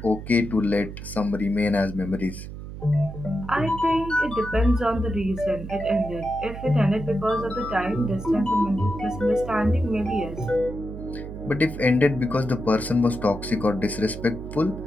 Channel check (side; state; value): right; noise; hum, 10 dB below the sound